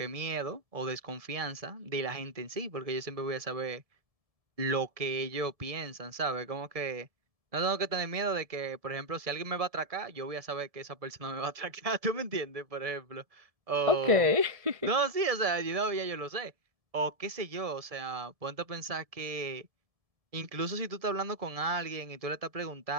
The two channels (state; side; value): late; left; 1.7 ms